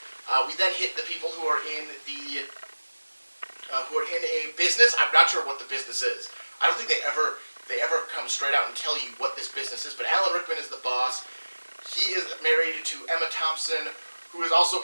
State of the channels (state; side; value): inverted; both; correlation -1.00